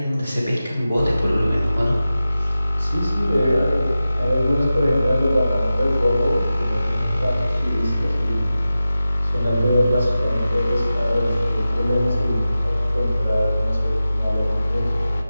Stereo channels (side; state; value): both; inverted; correlation -0.94